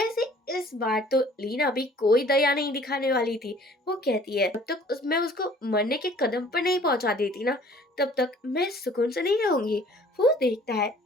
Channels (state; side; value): normal; both; correlation 0.53